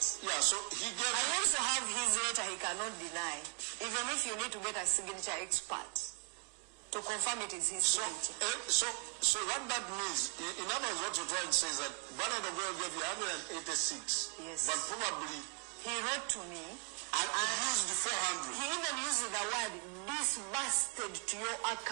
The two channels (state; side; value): quieter; left; 35.4 dB